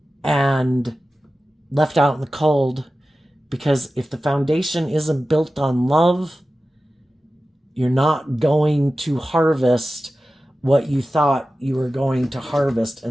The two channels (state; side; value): normal; both; correlation 0.94